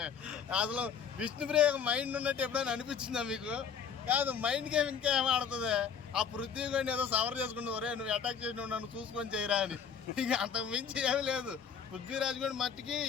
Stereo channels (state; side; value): quieter; right; 7.1 dB